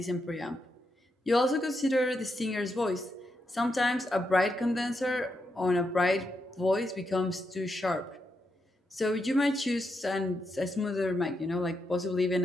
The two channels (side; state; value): both; normal; correlation 0.83